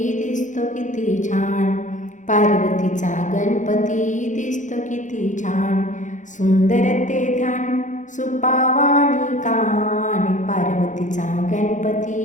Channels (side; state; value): right; late; 0.36 ms